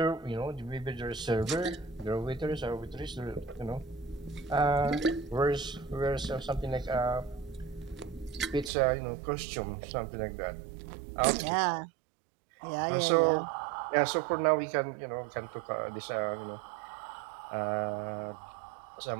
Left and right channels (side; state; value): left; drops out; at 8.7 s